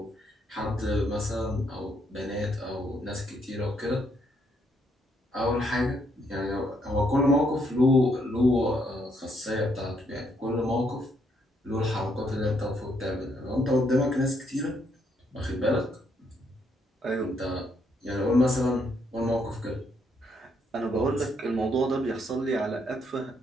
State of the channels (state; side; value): normal; both; correlation 0.73